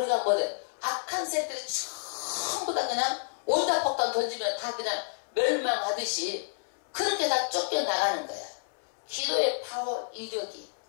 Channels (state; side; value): silent; right; 58 dB below the other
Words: 뭐 돼? 악한 새들이 전부 다 그냥 원자폭탄 던지면 다 그냥 멸망하듯이 그렇게 다 쫓겨나가는 거야. 기도의 파워, 이력이